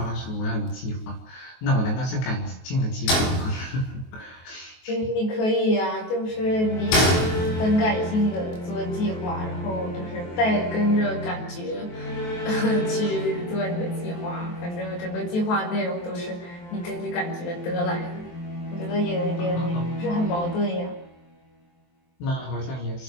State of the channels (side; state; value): right; late; 23 ms